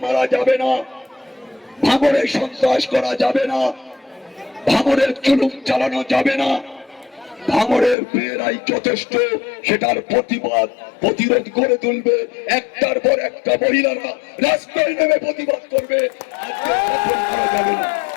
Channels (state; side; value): drops out; right; at 8.0 s